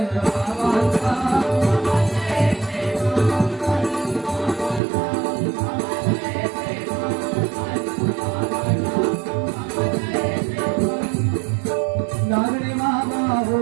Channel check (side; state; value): left; drops out; at 4.8 s